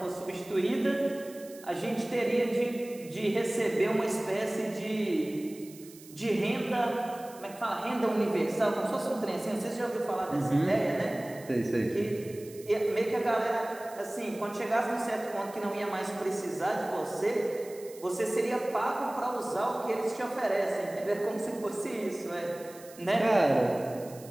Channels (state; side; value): noise; right; hiss, 20 dB below the sound